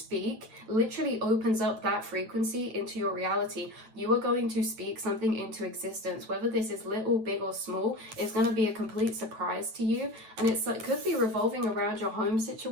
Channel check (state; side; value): late; left; 9.0 ms